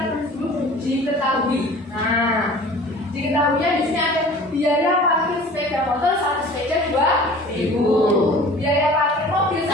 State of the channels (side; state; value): both; normal; correlation 0.44